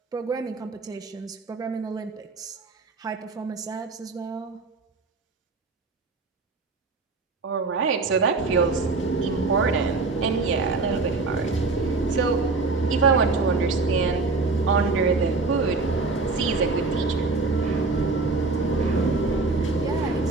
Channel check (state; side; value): quieter; left; 3.8 dB